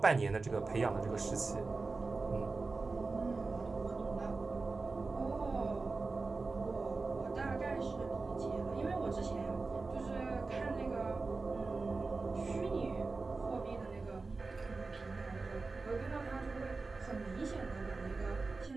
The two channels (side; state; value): left; quieter; 3.8 dB